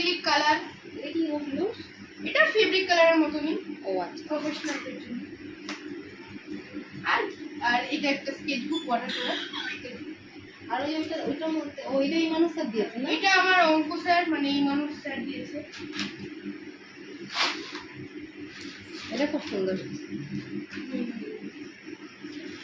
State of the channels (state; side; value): identical; both; correlation 1.00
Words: কালার এটা কি হলো? এটা ফেব্রিক কালারের মতনই ও আচ্ছা। প্রফেশনালদের জন্য আর আর এটা একটা স্কেচ বুক ওয়াটার কালার আর ওইটার মধ্যে ওইটা এই মানুষটা দিয়েছে না? এটা আমার অঙ্ক স্যার মানে এই মানুষ স্যার দিয়েছে এটা খুব সুন্দর।